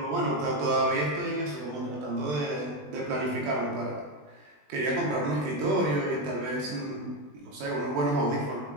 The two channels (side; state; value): left; late; 20 ms